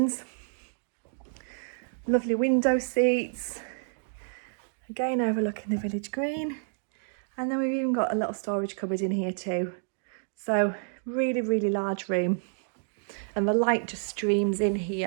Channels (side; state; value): left; silent; digital silence